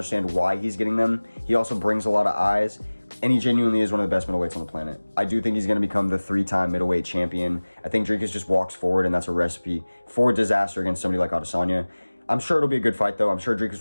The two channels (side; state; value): both; inverted; correlation -1.00